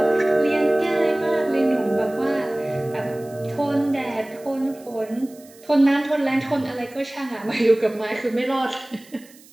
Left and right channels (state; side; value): noise; right; hiss, 25 dB below the sound